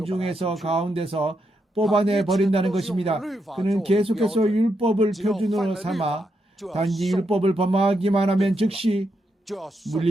가운데서 뽑아내 버린다는 것입니다. 그는 계속해서 율법을 표준으로 삼아 단지 율법을 범하기만 하면 즉시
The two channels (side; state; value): both; normal; correlation 0.82